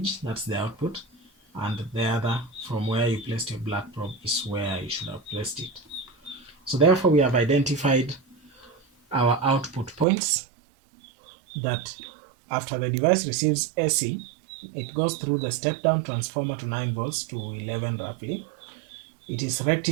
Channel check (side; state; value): left; drops out; at 10.1 s